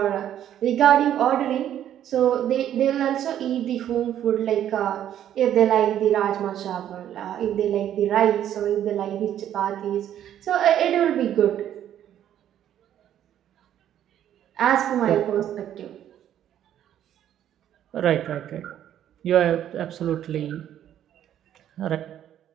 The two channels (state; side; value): quieter; left; 10.8 dB